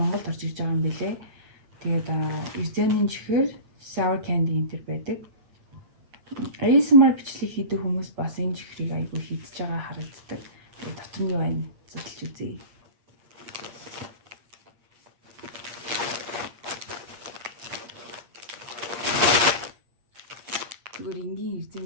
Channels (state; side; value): late; left; 8.6 ms